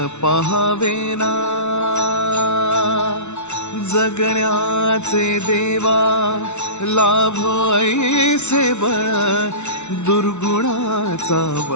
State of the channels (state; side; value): late; right; 0.82 ms